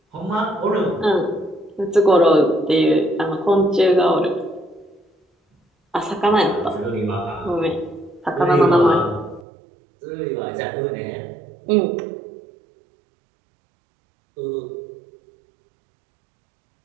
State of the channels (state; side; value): drops out; left; at 9.5 s